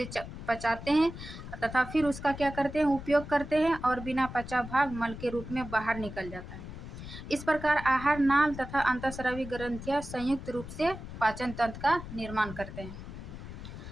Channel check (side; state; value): left; noise; rumble, 11 dB below the sound